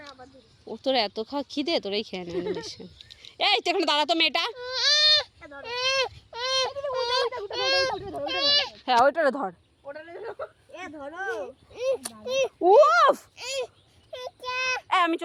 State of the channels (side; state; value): both; identical; correlation 1.00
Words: ও তোর এত খাওয়া খিদে, তোরাই খেয়ে নেন। এই তো এখানে দাঁড়া তো মেয়েটা। হ্যাঁ, ওইটারে ধর। উফ, আমি